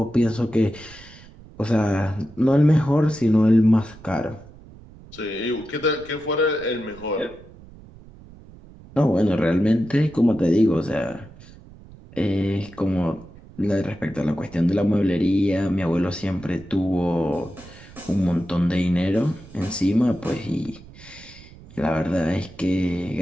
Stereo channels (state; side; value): noise; right; rumble, 20 dB below the sound